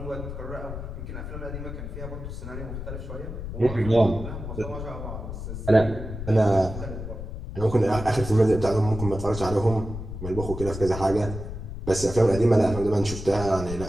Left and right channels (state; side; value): noise; left; rumble, 8 dB below the sound